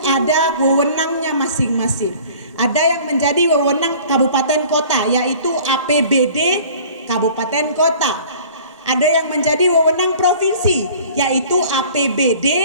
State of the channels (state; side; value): inverted; both; correlation -0.47